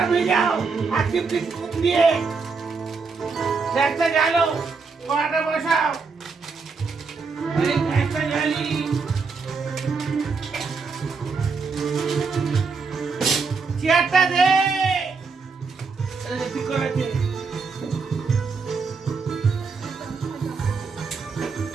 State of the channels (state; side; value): quieter; left; 4.8 dB